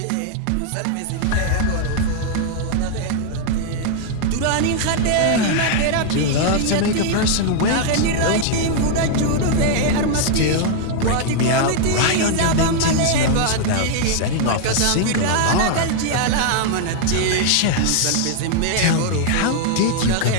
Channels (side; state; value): both; different; correlation 0.00